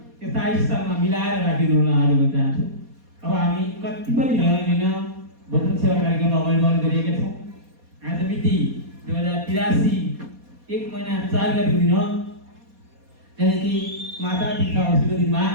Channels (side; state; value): left; late; 4.2 ms